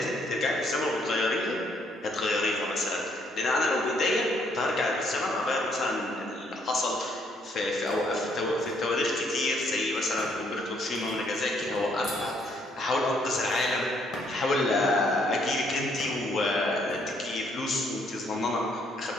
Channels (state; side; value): normal; both; correlation 0.68